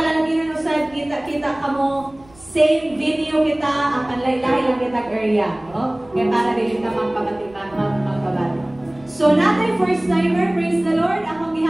usad, kita-kita ka mo, same video kita, ang panlaylay lang kita area. No? Kaya para din ka magpabati. So, natin first timer, praise the Lord. Akong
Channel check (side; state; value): right; noise; rumble, 26 dB below the sound